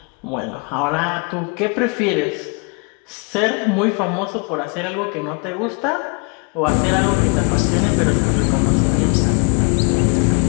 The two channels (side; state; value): right; quieter; 35.9 dB